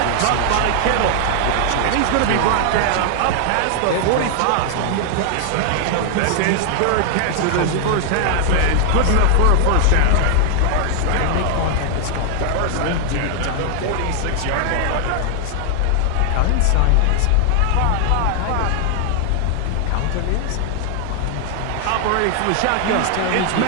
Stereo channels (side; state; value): both; different; correlation 0.00